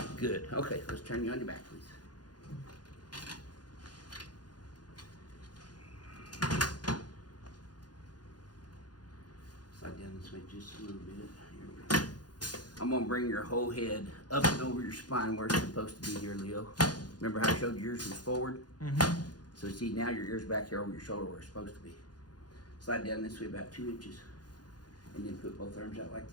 Good. Okay, let's turn you on your back, please. Slide down this way just a little bit. Here we go. I'm going to bring your whole head up and over your spine where it's supposed to be here, Leo. Remember how I showed yours was forward? So see, now your ear's back here over your shoulder where it's supposed to be. Slide down this way about 2 inches. And then put both arms out like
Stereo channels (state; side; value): late; right; 0.69 ms